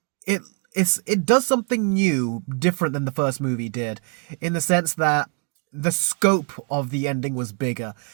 it does something new, different than the first movie did, in the sense that the scope of the ending was bigger.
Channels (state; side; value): quieter; left; 37.0 dB